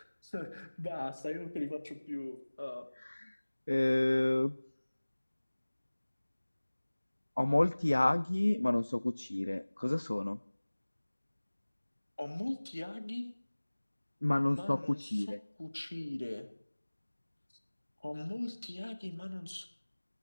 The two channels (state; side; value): inverted; both; correlation -1.00